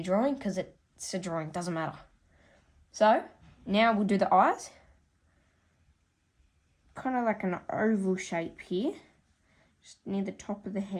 drawing, because it's a drawing, it doesn't matter. So, now we'll do the eyes. Kind of like an oval shape here, just near the top of the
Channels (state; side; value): identical; both; correlation 1.00